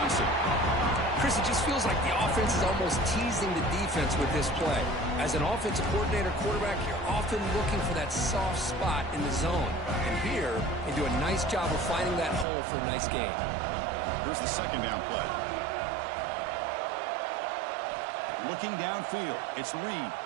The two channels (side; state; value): left; drops out; at 12.5 s